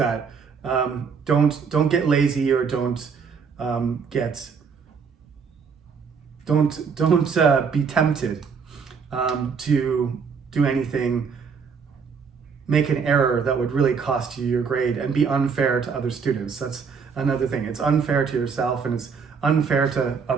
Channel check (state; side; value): quieter; left; 5.9 dB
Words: Don't get lazy, or don't be tempted to do anything, make an error that would really cost you your grade and be unfair to other students. That's another thing. It's unfair to yourself and it's unfair to